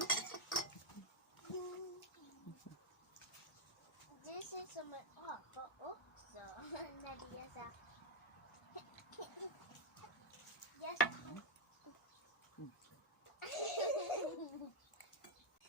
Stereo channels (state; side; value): normal; both; correlation 0.02